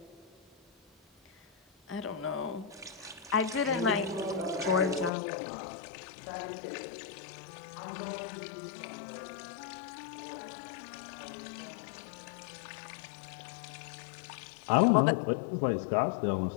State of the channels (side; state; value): right; drops out; at 5.1 s